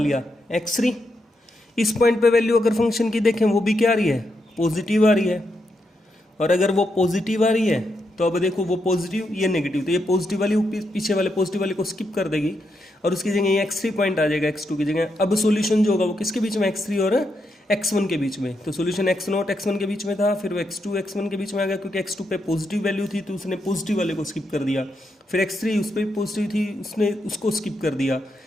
x3। इस पॉइंट पे वैल्यू अगर फंक्शन की देखें वो भी क्या आ रही है, पॉजिटिव आ रही है। और अगर वो पॉजिटिव आ रही है तो अब देखो वो पॉजिटिव ये नेगेटिव, तो ये पॉजिटिव वाली पीछे वाले पॉजिटिव वाले को स्किप कर देगी और उसकी जगह ये x3 पॉइंट आ जाएगा x2 की जगह। अब सॉल्यूशन जो होगा वो किसके बीच में, x3 और x1 के बीच में। तो सॉल्यूशन x0 x1 के बीच में था, फिर वो x2 x1 के बीच में आ गया क्योंकि x2 पे पॉजिटिव वैल्यू थी तो उसने पॉजिटिव वाले को स्किप कर दिया। फिर x3 उस पर पॉजिटिव थी, उसने उसको स्किप कर दिया।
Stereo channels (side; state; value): both; normal; correlation 0.82